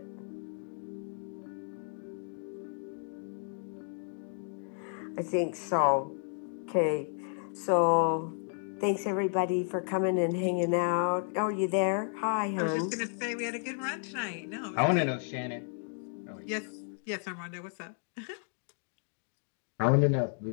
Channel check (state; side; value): silent; right; 56 dB below the other